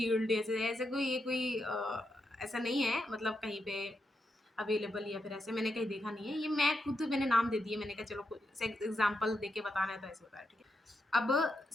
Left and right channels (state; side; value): normal; both; correlation 0.84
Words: ऐसे ऐसे कोई ये कोई ऐसा नहीं है मतलब कहीं पे अवेलेबल या फिर ऐसे मैंने कहीं देखा नहीं है। ये मैं खुद मैंने नाम दे दिए, मैंने कहा चलो कोई से एग्ज़ाम्पल देके बताना है तो ऐसे बताया, ठीक है? अब